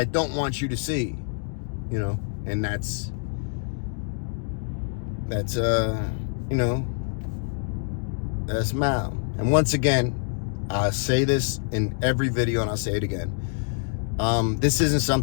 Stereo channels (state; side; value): silent; right; 60 dB below the other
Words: don't want you to see, you know. And that's you know, that's Mal. And once again, I say this in every video, and I'll say it again. This isn't